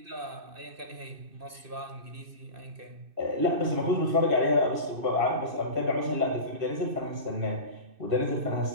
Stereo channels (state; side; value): late; left; 2.6 ms